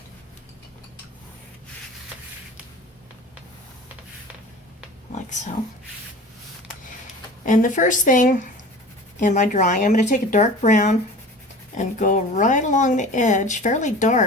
Like so. And the first thing in my drawing, I'm going to take a dark brown and go right along the edge, fairly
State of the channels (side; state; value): both; normal; correlation 0.39